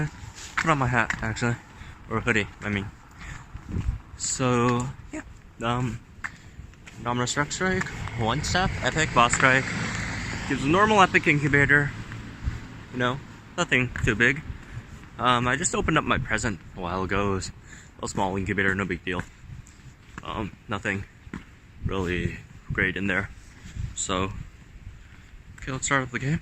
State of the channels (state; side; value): identical; both; correlation 1.00